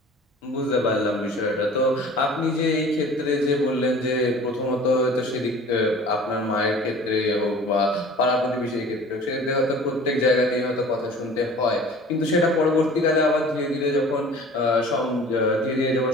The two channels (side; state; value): both; normal; correlation 0.45